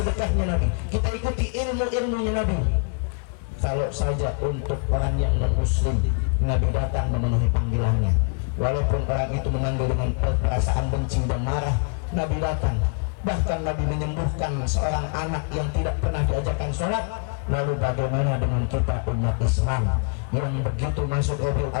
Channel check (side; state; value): right; quieter; 38.8 dB